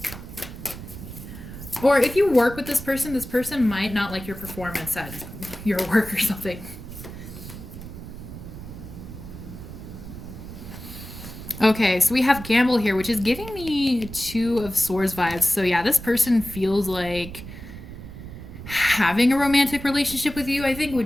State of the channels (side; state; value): right; noise; rumble, 12 dB below the sound